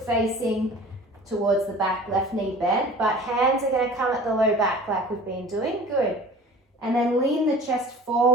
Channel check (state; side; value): normal; both; correlation 0.43